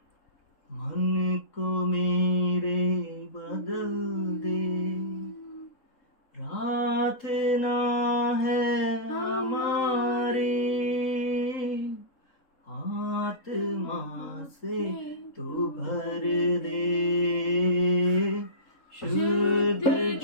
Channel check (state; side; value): late; right; 3.8 ms